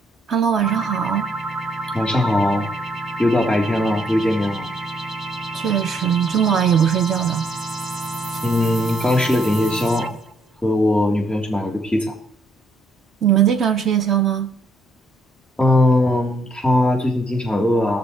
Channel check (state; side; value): normal; both; correlation 0.71